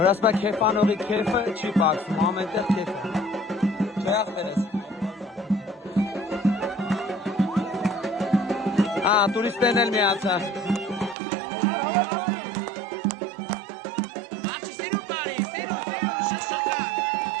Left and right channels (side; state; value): left; drops out; at 11.2 s